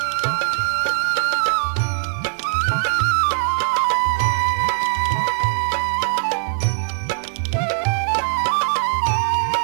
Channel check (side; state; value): left; silent; digital silence